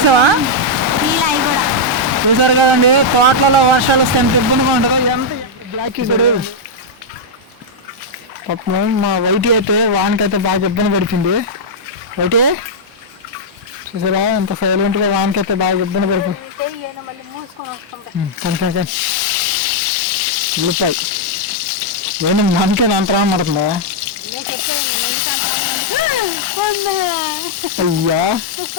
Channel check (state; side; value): late; left; 1.6 ms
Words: చూసారు కదండి, తోటలలో వర్షాలు వస్తే ఎంత ఇబ్బందిగా ఉంటుందో. ఎంత బ్లాక్ చూసాడు పాపం. మా వైటి అయితే వానకైతే బాగా ఇబ్బంది పడుతుంది. వైటి చూసారా ఎంత సైలెంట్గా వానకైతే బాగా ఇబ్బంది పడుతుంది. ఉల్లిపాయ ఏంటి మనకే అంతరా పడుతుందా? అయ్యా